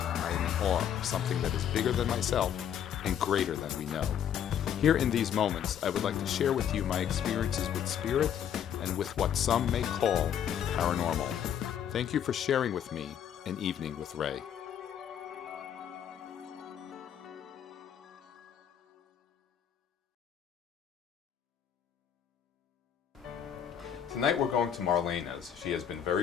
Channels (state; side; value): quieter; right; 9.2 dB